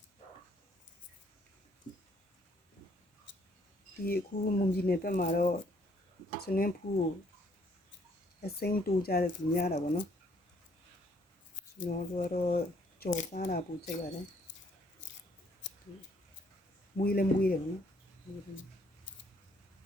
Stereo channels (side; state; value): both; normal; correlation 0.65